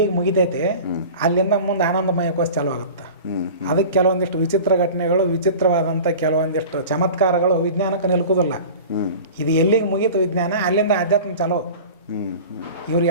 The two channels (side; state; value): both; inverted; correlation -0.38